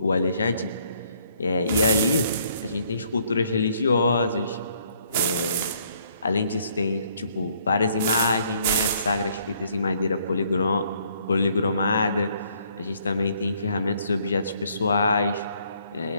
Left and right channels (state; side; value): inverted; both; correlation -0.66